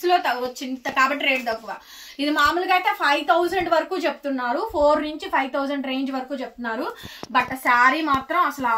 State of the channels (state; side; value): identical; both; correlation 1.00